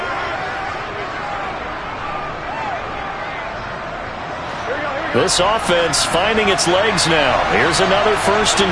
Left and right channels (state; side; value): identical; both; correlation 1.00